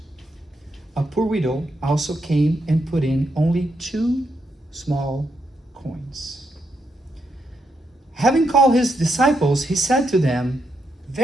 a poor widow also came and put in only 2 small coins. Having called his disciples, he said to them,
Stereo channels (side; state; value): both; normal; correlation 0.81